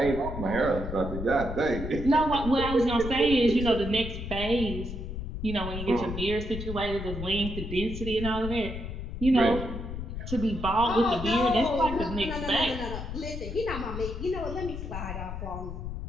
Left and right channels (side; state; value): left; noise; rumble, 6 dB below the sound